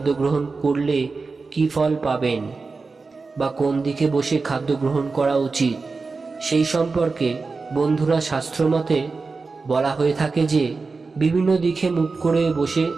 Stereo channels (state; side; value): quieter; left; 4.2 dB